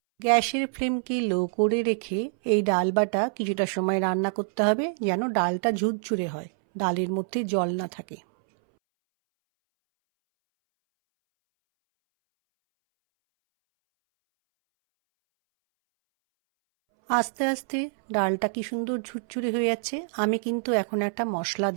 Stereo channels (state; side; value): silent; left; 61 dB below the other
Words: গ্যাসের ফ্লেমকে লো করে রেখে এই ডাল বাটা কিছুটা সময় রান্না করতে হবে, যেন ডালটা ঝুরঝুরে হয়, ডালের মধ্যে জল না থাকে। আস্তে আস্তে ডালটা কি সুন্দর ঝুরঝুরে হয়ে যাচ্ছে। আমি কিন্তু এখন একটা মশলা